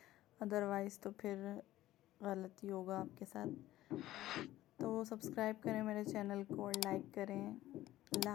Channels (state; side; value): quieter; right; 15.1 dB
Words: अदरवाइज़ तो फिर गलती होगा आपके साथ। तो सब्सक्राइब करें मेरे चैनल को और लाइक करें। अल्लाह